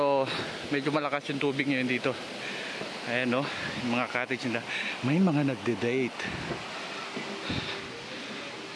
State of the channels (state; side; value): identical; both; correlation 1.00